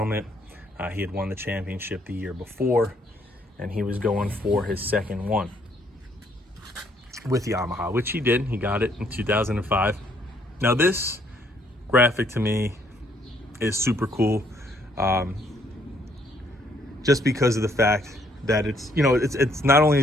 He had won the championship the year before, and he was going for his second one with Yamaha, which he did. He got it in 2005. Now this graphic to me is super cool, just because of the fact that it's, you know, it's not only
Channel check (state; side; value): normal; both; correlation 0.68